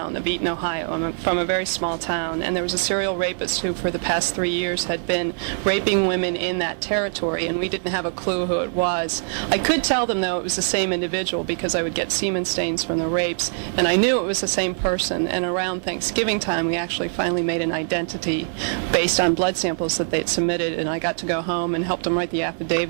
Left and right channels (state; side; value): silent; left; 63 dB below the other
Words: of Eaton, Ohio. I'm from a very small town, and there was a serial rapist who for the past 3 years had been raping women in that territory, and we didn't have a clue who it was. I could tell them, though, it was the same individual because I would get semen stains from the rapes, and I knew it was the same person. And around Thanksgiving time, we actually finally made an identity based on blood samples that they'd submitted, and I got to go home and helped them write the